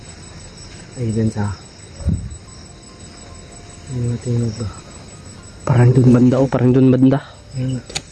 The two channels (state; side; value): identical; both; correlation 1.00